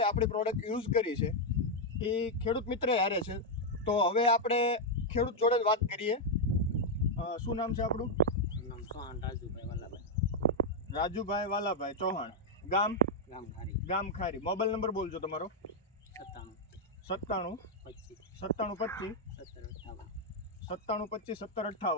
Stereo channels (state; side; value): normal; both; correlation -0.02